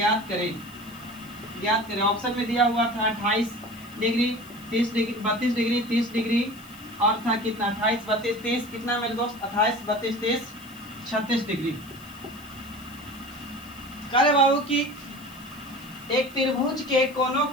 करें। ऑप्शन में दिया हुआ था 28 डिग्री, 30 डिग्री, 32 डिग्री, 30 डिग्री, और था कितना 28, 32, 30, कितना मेरे दोस्त 28, 32, 30, 36 डिग्री। कह रहे बाबू कि एक त्रिभुज के कोणों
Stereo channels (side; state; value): left; noise; hiss, 22 dB below the sound